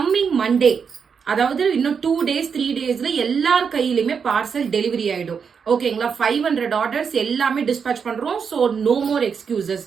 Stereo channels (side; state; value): left; quieter; 6.3 dB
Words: மண்டே, அதாவது இன்னும் 2 days 3 daysல எல்லார் கையிலுமே பார்சல் டெலிவரி ஆயிடும். ஓகேங்களா? 500 ஆர்டர்ஸ் எல்லாமே டிஸ்பேச் பண்றோம். So no more excuses.